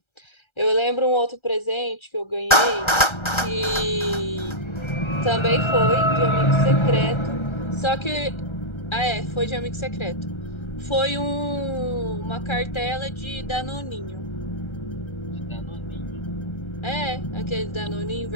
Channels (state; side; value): late; right; 1.3 ms